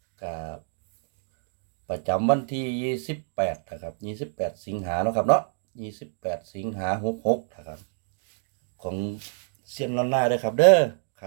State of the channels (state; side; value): silent; left; digital silence